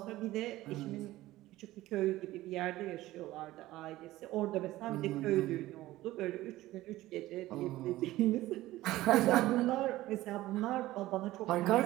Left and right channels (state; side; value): quieter; left; 16.6 dB